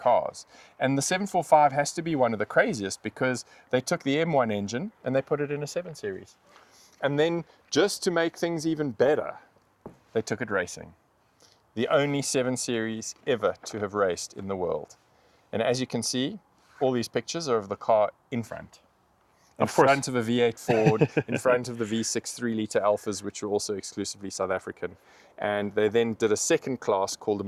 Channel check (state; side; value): identical; both; correlation 1.00